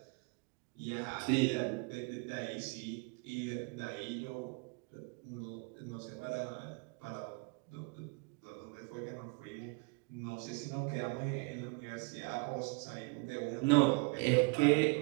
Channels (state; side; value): quieter; left; 30.0 dB